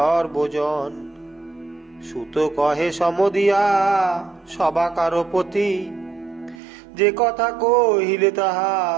সুত কহে সমদিয়া সবাকার প্রতি, যে কথা কহিলে তাহা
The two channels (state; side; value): drops out; left; at 6.6 s